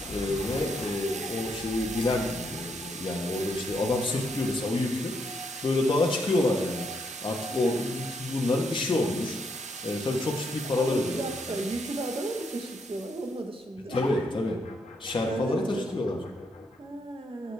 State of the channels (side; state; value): both; normal; correlation 0.76